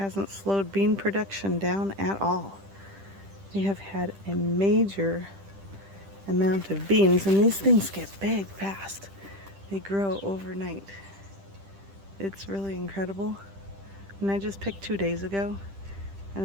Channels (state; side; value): late; left; 10 ms